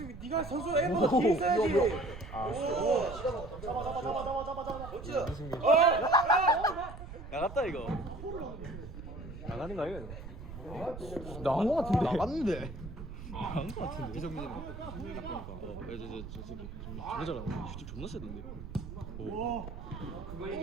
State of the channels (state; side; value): noise; right; rumble, 11 dB below the sound